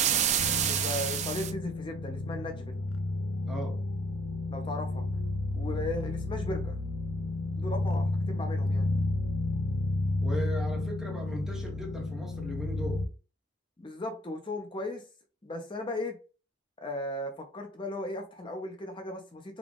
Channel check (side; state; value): both; normal; correlation 0.62